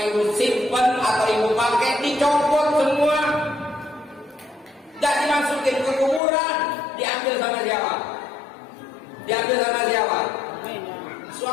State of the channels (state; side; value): drops out; right; at 6.2 s